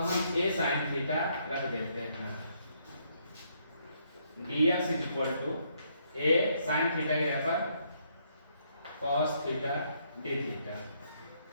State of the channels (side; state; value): both; inverted; correlation -0.72